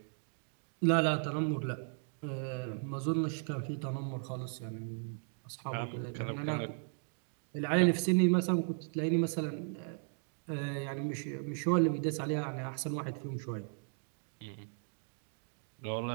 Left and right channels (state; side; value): silent; left; 54 dB below the other